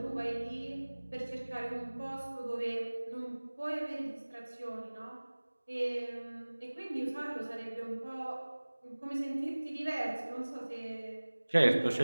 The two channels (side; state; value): both; inverted; correlation -1.00